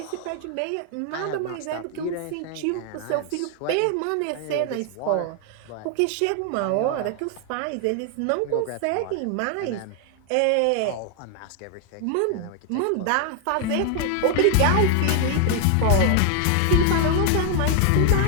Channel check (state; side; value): different; both; correlation 0.00